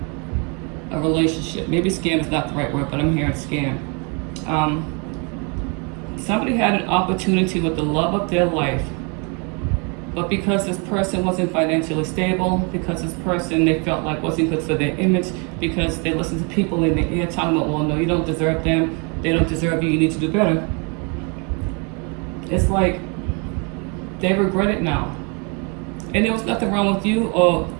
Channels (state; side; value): quieter; left; 33.6 dB